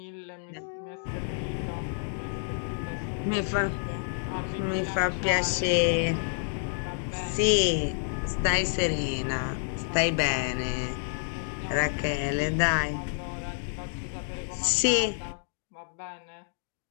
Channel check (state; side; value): silent; right; digital silence